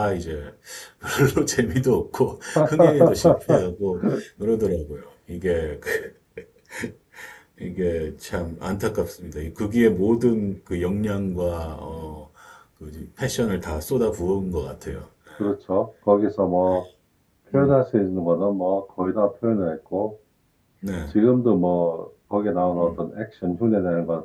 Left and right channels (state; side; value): identical; both; correlation 1.00